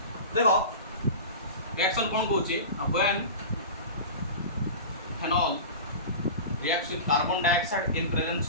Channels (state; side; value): inverted; both; correlation -0.31